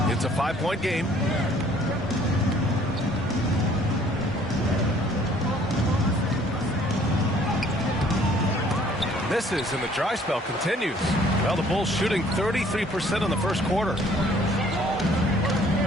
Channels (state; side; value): normal; both; correlation 0.58